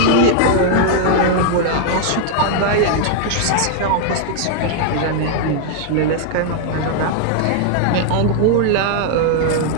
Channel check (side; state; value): both; different; correlation 0.00